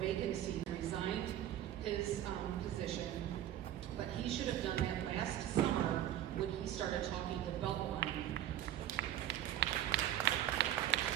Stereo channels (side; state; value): left; quieter; 11.9 dB